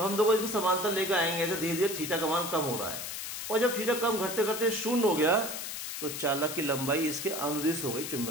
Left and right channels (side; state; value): left; noise; hiss, 6 dB below the sound